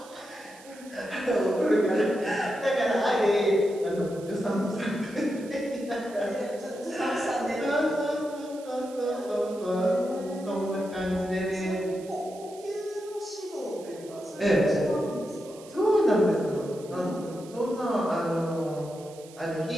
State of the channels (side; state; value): right; noise; hiss, 21 dB below the sound